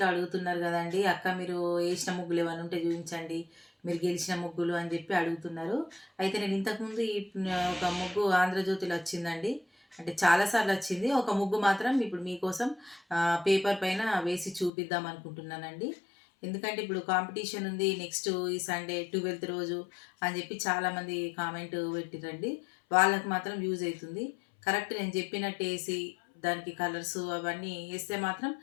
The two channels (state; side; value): drops out; right; at 14.7 s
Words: అడుగుతున్నారు గదండీ! అక్క మీరు ఏసిన ముగ్గులు ఏమన్నా ఉంటే చూయించండి. మీరు గెలిచిన ముగ్గులు అని జెప్పి అడుగుతున్నారు. అయితే నేను ఇంతకుముందు ఒక ముగ్గు ఆంధ్రజ్యోతిలో వచ్చిందండి. అంటే చాలా సార్లు వచ్చింది. ఒక ముగ్గు మాత్రం ఇప్పుడు మీకోసం పేపర్ పైన వేసి చూపిద్దాం అనుకుంటున్నానండి. ఎందుకంటే ఇప్పుడు కాంపిటీషన్ ఉంది. నెక్స్ట్ ఈ సండే 12థ్ రోజు అని జెప్పి చాలామంది కామెంట్ పెట్టిర్రండి. వాళ్ళకి మాత్రం యూజ్ అయితుంది. కరెక్ట్ నేను చెప్పినట్టేసి దానికి కలర్సు అవన్నీ ఏస్తే మాత్రం